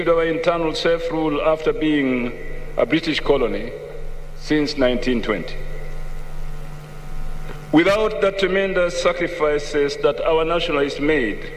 our internal self-rule after being a British colony since 1920. Without the tremendous sacrifices that our nationalists made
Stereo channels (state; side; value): identical; both; correlation 1.00